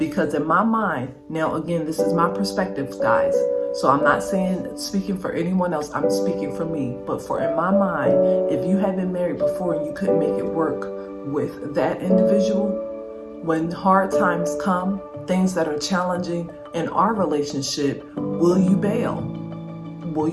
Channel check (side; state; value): both; identical; correlation 1.00